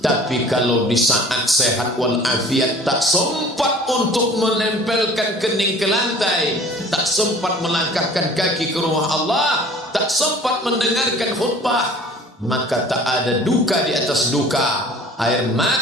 kalau di saat sehat walafiat tak sempat untuk menempelkan kening ke lantai, tak sempat melangkahkan kaki ke rumah Allah, tak sempat mendengarkan khutbah, maka tak ada duka di atas duka. Air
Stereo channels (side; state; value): both; normal; correlation 0.47